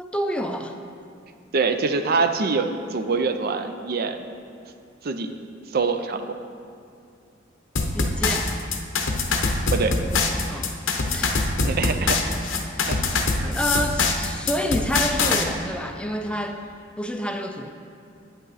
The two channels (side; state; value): both; normal; correlation 0.31